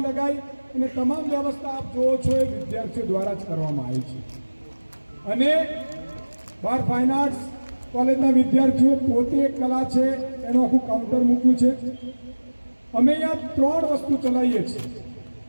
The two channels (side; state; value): both; inverted; correlation -1.00